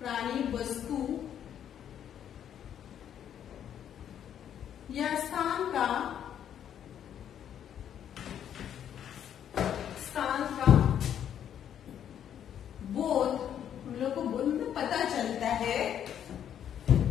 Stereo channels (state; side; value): quieter; right; 9.6 dB